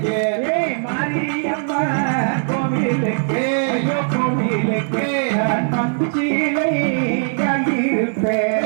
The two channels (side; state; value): left; silent; digital silence